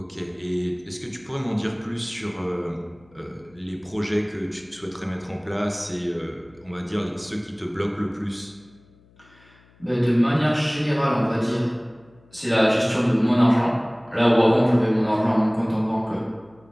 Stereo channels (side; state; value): left; noise; hum, 29 dB below the sound